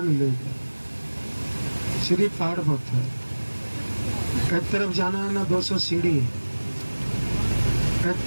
मिलेगा, सिर्फ पहाड़ पत्थर। एक तरफ जाना है ना 200 सीढ़ी, एक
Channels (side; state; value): both; inverted; correlation -1.00